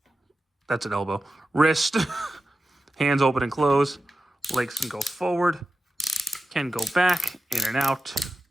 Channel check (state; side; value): normal; both; correlation 0.92